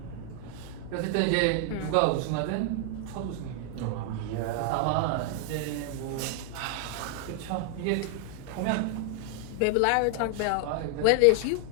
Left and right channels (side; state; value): both; different; correlation 0.00